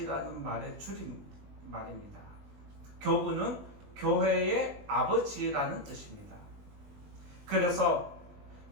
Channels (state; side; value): late; left; 20 ms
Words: 말의 줄임말입니다. 교부는 교회의 아버지라는 뜻입니다. 그래서